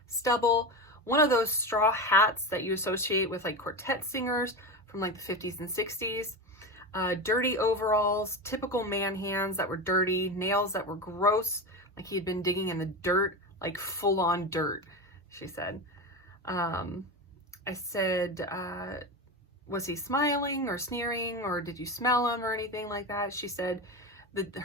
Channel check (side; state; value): both; normal; correlation 0.21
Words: stubble, one of those straw hats that you associate with like quartet singers from like the 50s and 60s, dirty overalls, typical man hands that were dirty, nails that were gross, like he had been digging in the dirt, like full on dirt, she said. I said, was he smiling or sneering, or did you smell him or anything like that? She said that